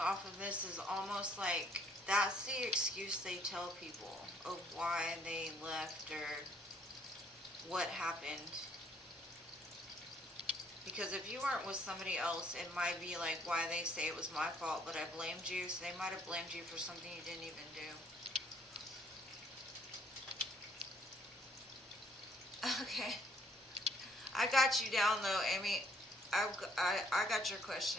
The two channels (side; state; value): both; normal; correlation 0.64